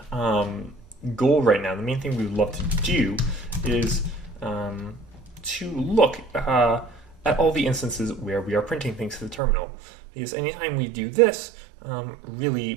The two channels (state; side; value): drops out; left; at 9.4 s